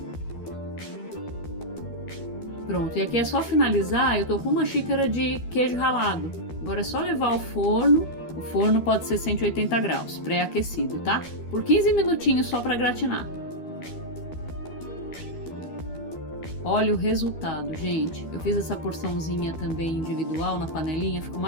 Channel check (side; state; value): right; late; 12 ms